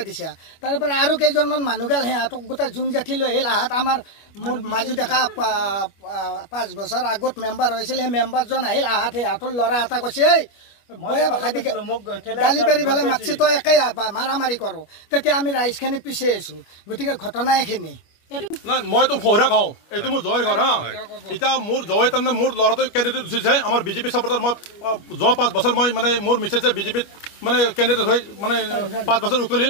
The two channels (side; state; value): right; late; 25 ms